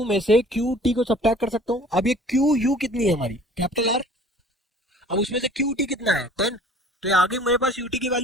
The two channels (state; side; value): normal; both; correlation 0.49